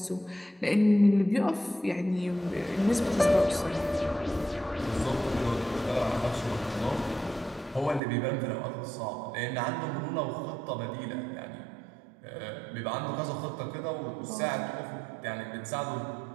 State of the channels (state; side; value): drops out; left; at 8.0 s